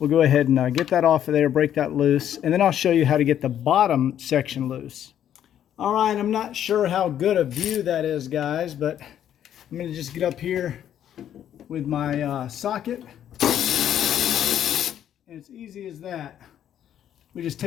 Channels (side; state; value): right; quieter; 10.3 dB